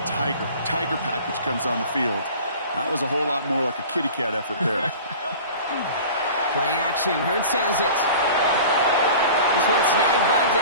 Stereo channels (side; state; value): both; inverted; correlation -0.40